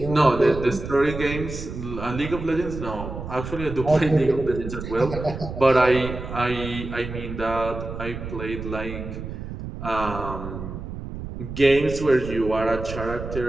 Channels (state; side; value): noise; right; rumble, 8 dB below the sound